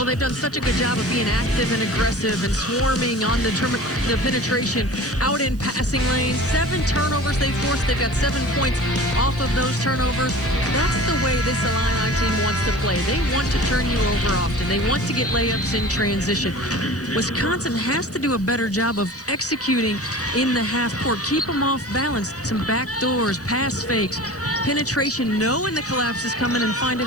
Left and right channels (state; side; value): noise; right; hiss, 26 dB below the sound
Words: they've done such a good job of being active and aggressive and swarming on the penetration out in passing lanes. 7 turnovers they forced. They've got 7 points off of those turnovers. That's the way this Illini team wants to play. They want to turn you over often. They want to get layups in transition. Wisconsin has to do a better job of executing in the half court. Keep them off balance. Some back doors, pass fakes, penetration, knowing the collapse is coming and